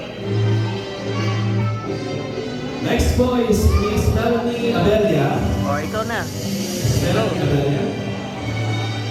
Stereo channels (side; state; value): both; identical; correlation 1.00